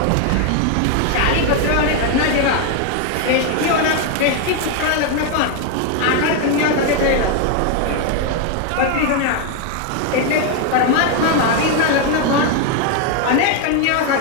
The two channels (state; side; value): different; both; correlation 0.01